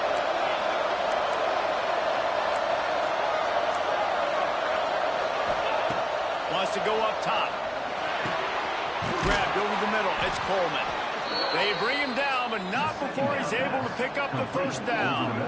Wants to go up top. Grabbed over the middle. It's Coleman. They bring him down, but not before he's able to pick up the first down.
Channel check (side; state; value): both; identical; correlation 1.00